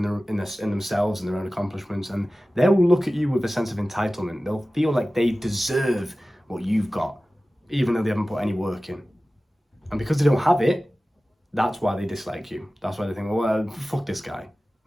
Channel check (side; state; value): both; normal; correlation 0.96